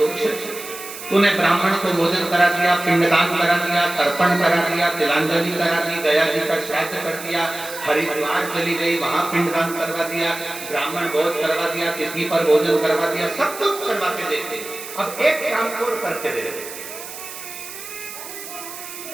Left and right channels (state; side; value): noise; right; hiss, 11 dB below the sound